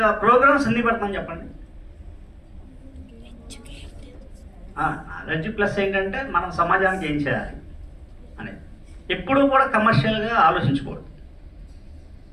ప్రోగ్రామ్స్ ఎందుకు పెడతాను చెప్పండి. నాలెడ్జ్ ప్లస్ ఏంటంటే మనం సమాజానికి ఏం చేయాలి అనేది. ఎప్పుడూ కూడా కమర్షియల్గా ఆలోచించకూడదు.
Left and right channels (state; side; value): identical; both; correlation 1.00